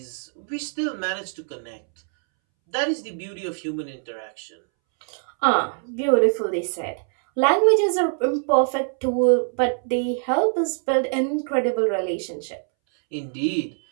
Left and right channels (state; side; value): silent; left; 63 dB below the other